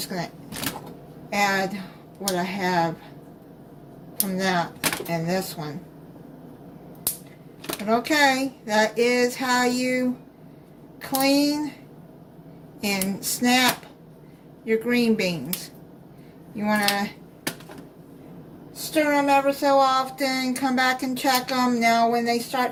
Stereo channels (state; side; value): identical; both; correlation 1.00